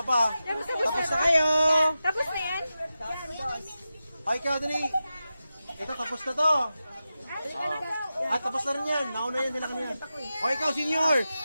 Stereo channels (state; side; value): inverted; both; correlation -0.92